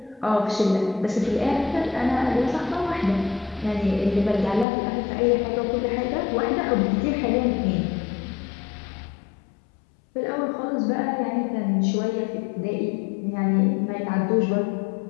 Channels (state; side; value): drops out; right; at 4.7 s